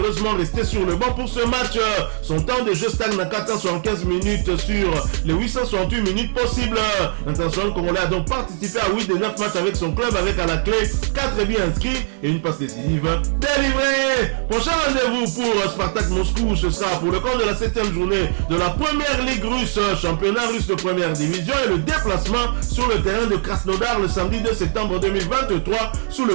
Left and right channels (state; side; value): silent; left; 61 dB below the other